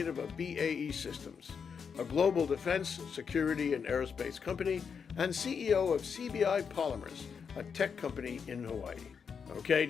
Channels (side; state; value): right; quieter; 6.4 dB